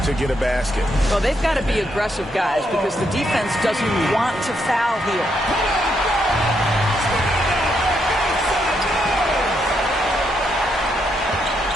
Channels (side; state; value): both; normal; correlation 0.78